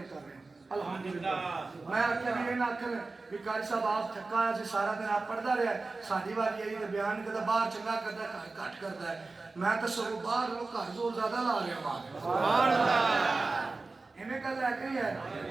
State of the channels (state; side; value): quieter; left; 3.6 dB